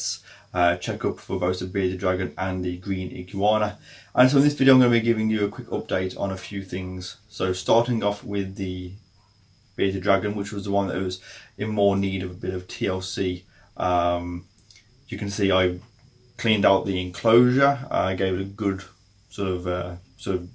checkup for both the bearded dragon and the green iguana. And so in this video I'm going to be giving you a quick update on a few things. So starting off with the bearded dragon, which was the one that was in more need of a bit of TLC. You can see I cleaned out the enclosure. I gave it a good sort of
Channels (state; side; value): identical; both; correlation 1.00